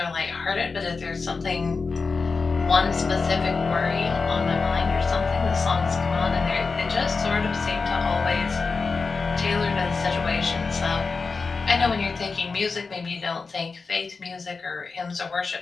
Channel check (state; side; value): quieter; right; 4.5 dB